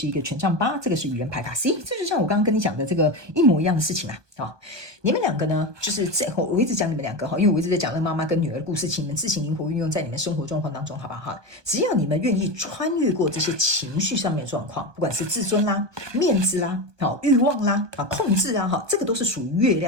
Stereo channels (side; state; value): left; late; 1.2 ms